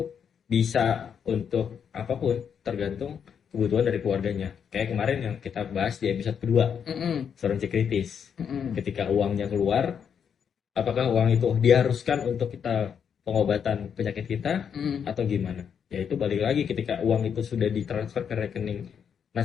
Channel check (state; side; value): quieter; right; 7.5 dB